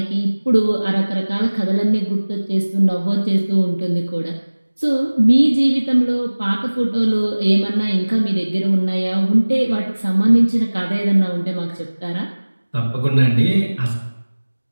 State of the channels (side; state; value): both; inverted; correlation -1.00